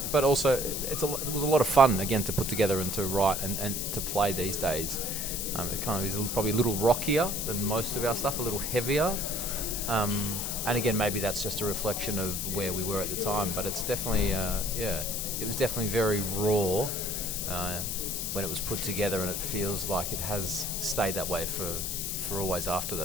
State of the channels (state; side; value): noise; left; hiss, 2 dB below the sound